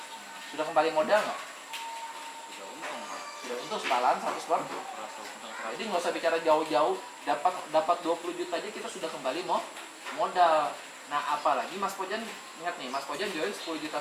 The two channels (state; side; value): identical; both; correlation 1.00